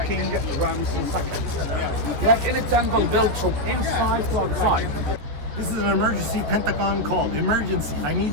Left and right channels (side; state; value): left; late; 14 ms